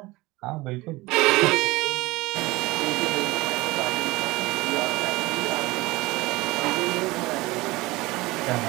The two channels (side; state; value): left; quieter; 21.0 dB